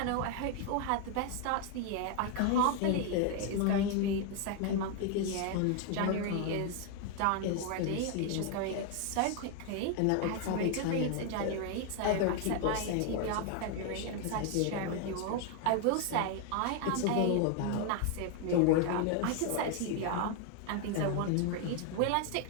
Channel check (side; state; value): both; different; correlation 0.01